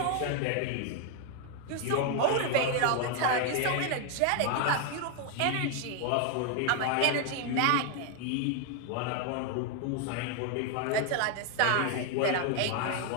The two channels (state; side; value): different; both; correlation 0.01